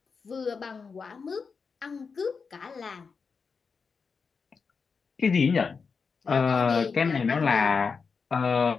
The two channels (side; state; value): right; quieter; 5.3 dB